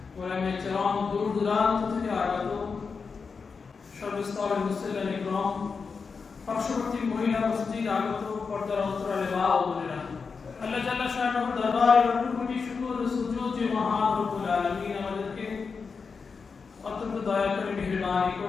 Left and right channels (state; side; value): quieter; right; 5.2 dB